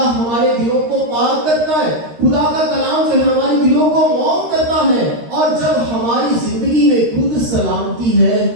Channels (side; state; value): left; late; 13 ms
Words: ہمارے دلوں کو پاک کرتا ہے، خدا کا کلام جو ہے ہمارے دلوں کو موم کرتا ہے۔ اور جب ہماری زندگی میں خود سلامتی ہے